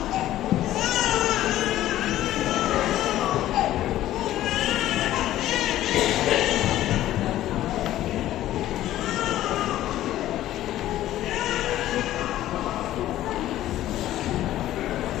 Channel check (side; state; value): right; quieter; 13.8 dB